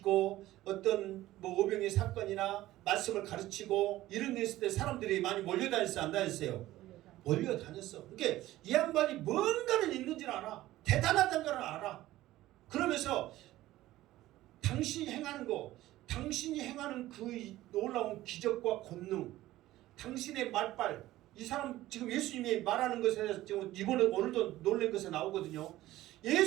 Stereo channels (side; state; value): left; quieter; 15.8 dB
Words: 어떤 뭐 오병의 사건이나 말씀을 가르치고 이런 데 있을 때 사람들이 많이 몰려다녔어요 안 다녔어요? 몰려다녔어. 그러니까 이 양반이 뭔가는 있는지는 알아. 대단하다는 걸 알아. 그러면서 당신이 행하는 거, 당신이 행하는 그 놀라운 기적과 권능, 당신의 말빨, 이 사람 지금 예수님이 말하는 것에 지금 이번에 오늘도 놀란 것에 나오거든요.